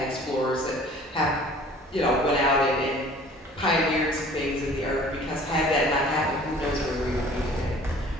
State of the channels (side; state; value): both; normal; correlation 0.49